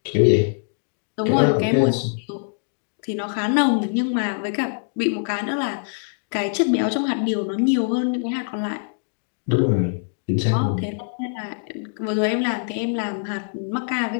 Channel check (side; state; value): right; silent; digital silence